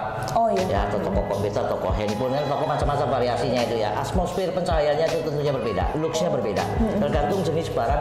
Oh iya. Ya, atau toko komputer, toko handphone, kan toko macam-macam variasinya itu ya. Atmosfer pencahayaannya itu tentunya berbeda, luxnya berbeda. Tergantung jenis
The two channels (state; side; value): identical; both; correlation 1.00